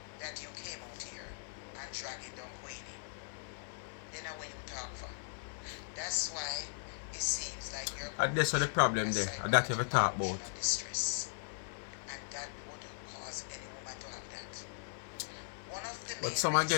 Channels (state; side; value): silent; right; 52 dB below the other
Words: that you came out here and dragging down Queenie, then how will you talk for? That's why it seems like you're and that's what the problem there. And that you ever talk about. Distress. And that would cause any woman to have that. One of the but some are